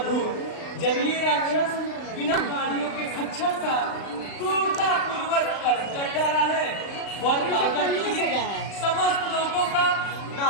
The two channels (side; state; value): right; late; 36 ms